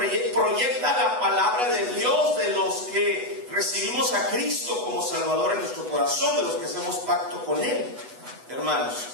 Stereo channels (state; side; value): late; left; 8.1 ms